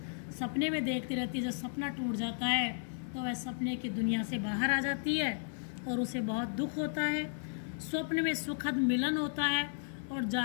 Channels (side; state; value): right; silent; digital silence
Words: सपने में देखती रहती है। जब सपना टूट जाता है तो वह सपने की दुनिया से बाहर आ जाती है और उसे बहुत दुख होता है। स्वप्न में सुखद मिलन होता है और